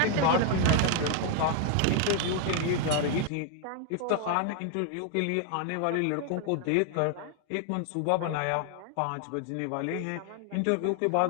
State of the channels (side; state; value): both; different; correlation 0.00